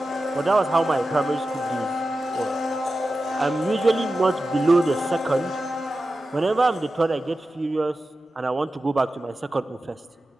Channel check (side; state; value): both; normal; correlation 0.93